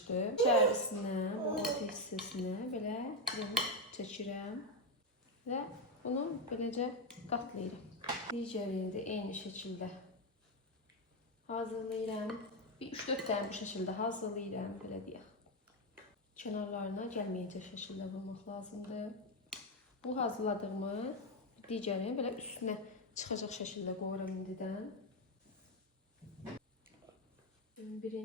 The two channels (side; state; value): both; normal; correlation 0.07